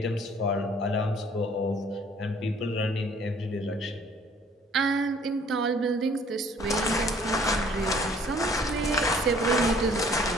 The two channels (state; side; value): normal; both; correlation 0.57